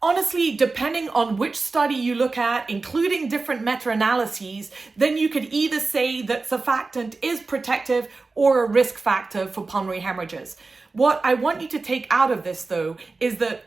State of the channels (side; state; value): left; quieter; 3.8 dB